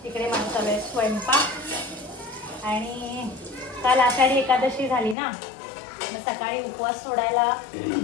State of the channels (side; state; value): right; drops out; at 5.2 s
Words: इकडे माझा चालू आहे स्वयंपाक. आणि काल आषाढी एकादशी झाली ना, मग सकाळी उपवास सोडायला